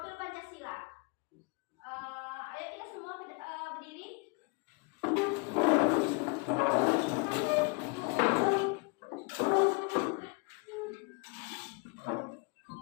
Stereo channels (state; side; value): quieter; right; 31.3 dB